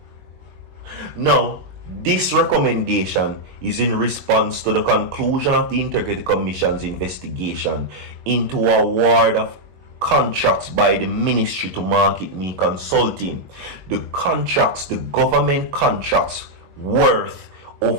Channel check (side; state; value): left; late; 22 ms